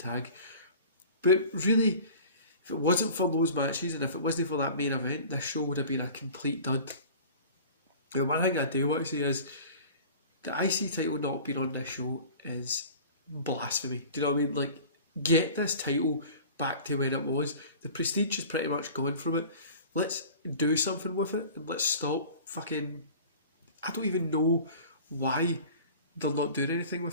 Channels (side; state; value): both; inverted; correlation -0.42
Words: But really, if it wasn't for those matches, and if it wasn't for that main event, this show would have been a complete dud. And one thing I do want to say is, the IC title not being on this show is blasphemy. Do you know what I mean? Like, get this title back to where it was. The prestige is pretty much gone from it. Let's do something with it, and let's stop fucking... I don't even know why they're not doing anything